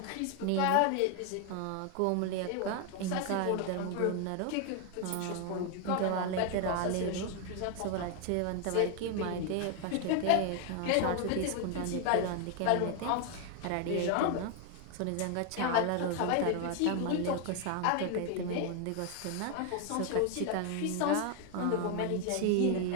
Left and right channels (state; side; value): different; both; correlation 0.00